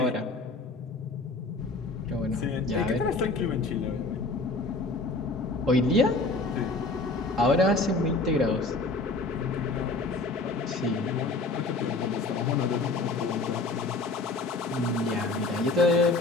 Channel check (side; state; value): right; quieter; 3.3 dB